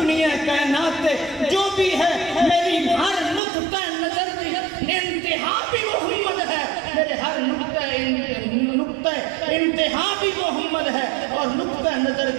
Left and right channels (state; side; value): drops out; left; at 3.4 s